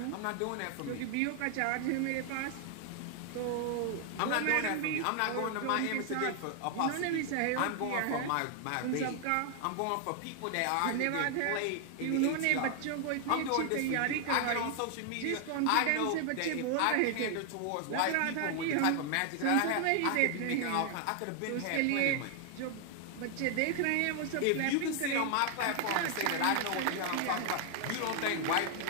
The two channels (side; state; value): both; different; correlation 0.00